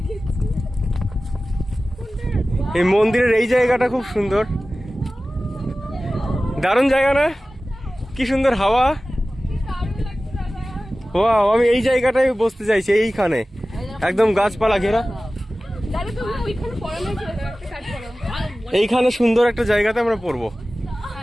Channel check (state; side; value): normal; both; correlation 0.96